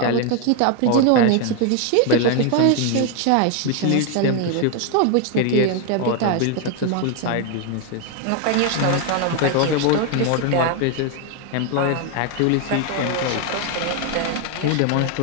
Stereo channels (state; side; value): different; both; correlation 0.01